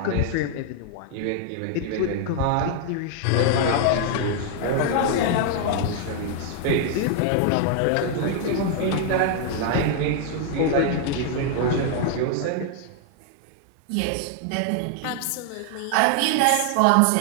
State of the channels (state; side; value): different; both; correlation 0.00